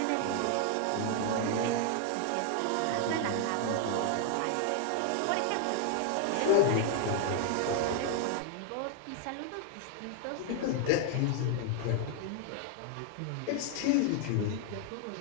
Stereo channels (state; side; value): different; both; correlation 0.00